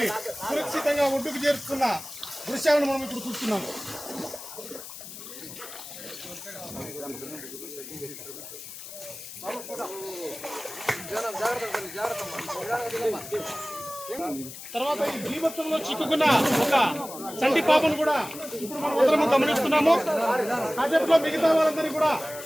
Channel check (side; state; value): left; noise; hiss, 12 dB below the sound